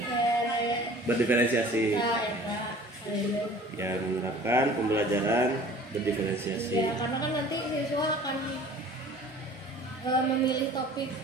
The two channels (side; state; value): both; normal; correlation 0.46